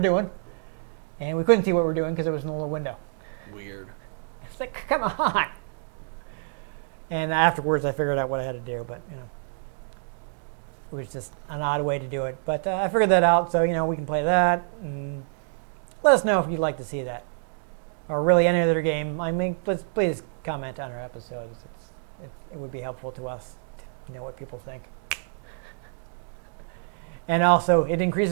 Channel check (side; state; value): left; silent; digital silence